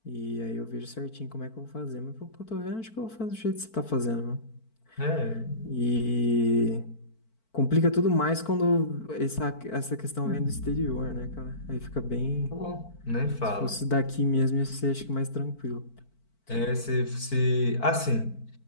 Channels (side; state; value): right; late; 4.5 ms